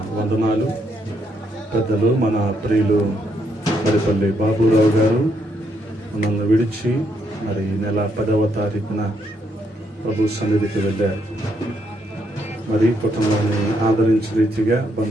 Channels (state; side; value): normal; both; correlation 0.75